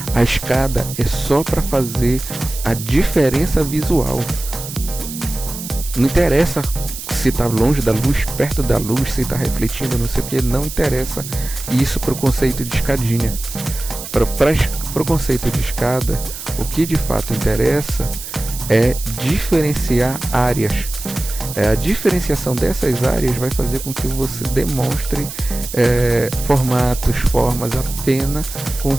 A escada é só para fazer a diferença visual. Não interessa se está longe da luz, perto da luz, se está refletindo, não sei o que, não interessa isso para o conceito de escadinha. Para o conceito de escada, o que de fato interessa é diferenciar áreas. A diferenciação dessas áreas vai fazer com que você demonstre formatos, formas apenas com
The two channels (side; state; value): right; noise; hiss, 10 dB below the sound